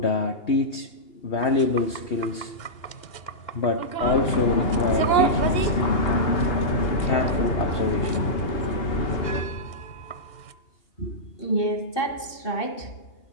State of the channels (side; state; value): right; late; 2.8 ms